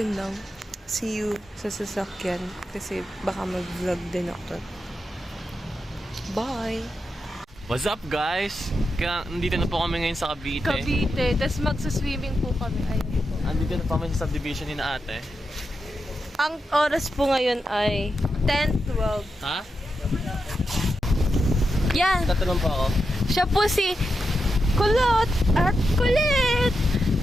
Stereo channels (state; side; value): normal; both; correlation 0.87